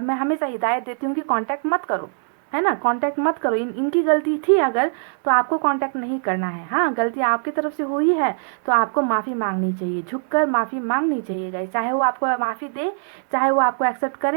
मैं हमेशा हिदायत देती हूँ कि कांटेक्ट मत करो, है ना, कांटेक्ट मत करो। इनकी गलती थी अगर, तो आपको कांटेक्ट नहीं करना है। हाँ, गलती आपकी तरफ से हुई है तो आपको माफ़ी मांगनी चाहिए, झुककर माफ़ी मांगनी चाहिए गाइस। चाहे वो आपको माफ़ी दे, चाहे वो आपको एक्सेप्ट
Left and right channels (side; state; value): left; silent; 64 dB below the other